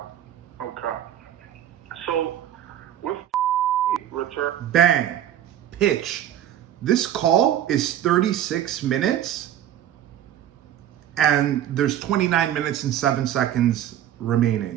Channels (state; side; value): quieter; left; 11.2 dB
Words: So, with return... Bang. Pitch. This call is 36 minutes and there's 29 minutes and 7 seconds